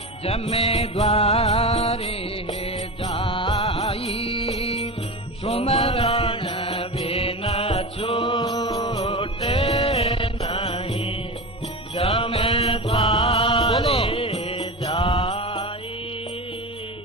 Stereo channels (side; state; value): both; normal; correlation 0.25